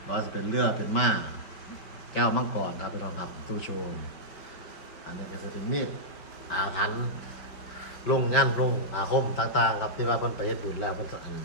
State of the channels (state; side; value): late; right; 5.4 ms